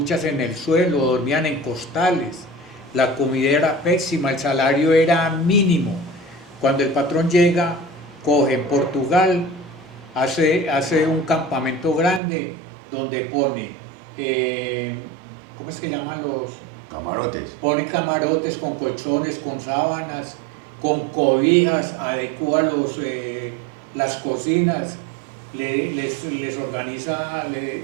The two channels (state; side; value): drops out; left; at 12.2 s